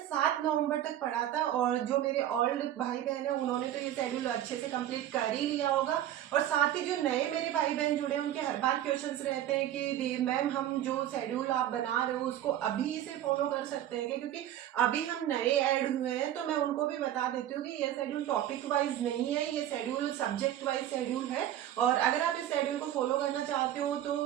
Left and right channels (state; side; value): quieter; left; 11.9 dB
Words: 7 नवंबर तक पढ़ा था। और जो मेरे ओल्ड भाई बहन है उन्होंने तो ये शेड्यूल अच्छे से कंप्लीट कर ही लिया होगा। और साथ ही जो नए मेरे भाई बहन जुड़े हैं उनके हर बार क्वेश्चंस रहते हैं कि मैम हम जो शेड्यूल आप बना रहे हो उसको अभी से फॉलो कर सकते हैं क्या, क्योंकि अभी हम नए ऐड हुए हैं। तो मैं उनको भी बता देती हूँ कि ये शेड्यूल टॉपिक वाइज नहीं है, ये शेड्यूल सब्जेक्ट वाइज शेड्यूल है। और अगर आप इस शेड्यूल को फॉलो करना चाहते हो